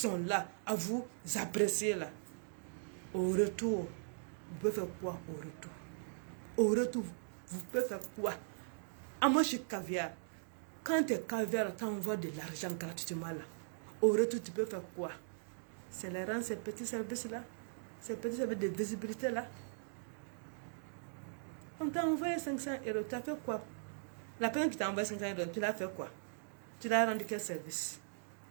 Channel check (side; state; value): left; silent; digital silence